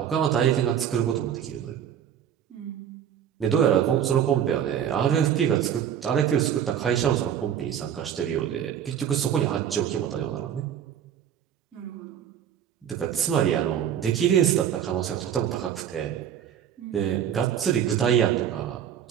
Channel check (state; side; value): quieter; left; 9.3 dB